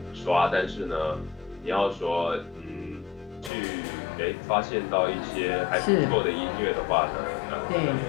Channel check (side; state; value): right; drops out; at 3.5 s